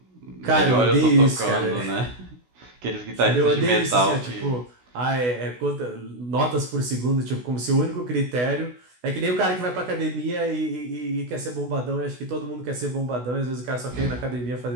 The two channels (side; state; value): left; late; 16 ms